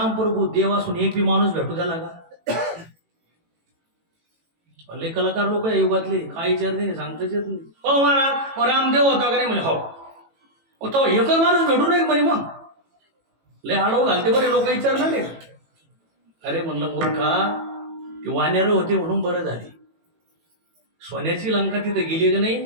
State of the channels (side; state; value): left; late; 18 ms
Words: प्रभू देव असून एक बी माणूस भेटू द्याला का? लय कलाकार लोक आहे युगातले, काय विचारते नाही, सांगताच येत नाही. हो महाराज मग रामदेव होता का नाही म्हणे. हो तो एकच माणूस भेटू नये म्हणे. मग लय आडव घालते बरे लोक विचारणार नाही. अरे म्हणलं मूर्खा, ती वानेर होती म्हणून बरं झाली. सोन्याची लंका तिथं गेली का नाही,